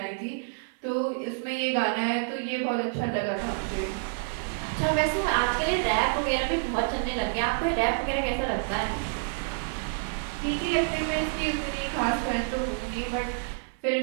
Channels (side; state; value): left; silent; 59 dB below the other